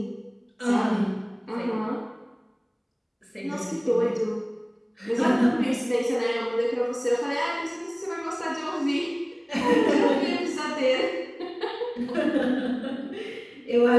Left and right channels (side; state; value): both; identical; correlation 1.00